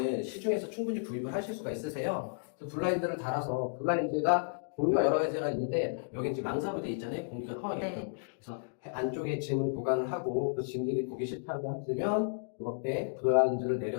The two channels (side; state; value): right; silent; digital silence